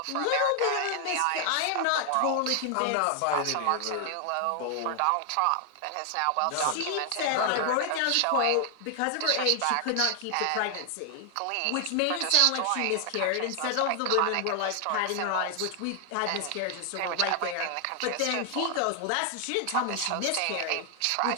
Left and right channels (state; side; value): different; both; correlation 0.00